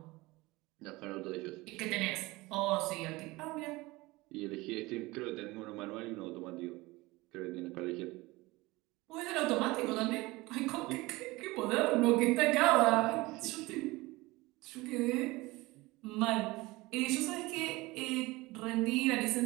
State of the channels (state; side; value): quieter; left; 21.4 dB